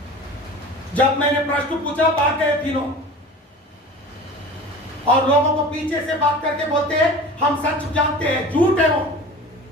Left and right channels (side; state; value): both; normal; correlation 0.38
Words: जब मैंने प्रश्न पूछा, भाग गए तीनों। और लोगों को पीछे से बात करके बोलते हैं हम सच जानते हैं, झूठ है वो।